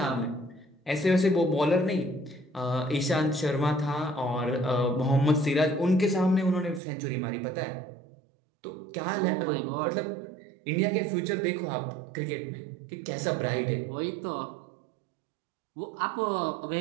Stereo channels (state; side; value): drops out; left; at 6.8 s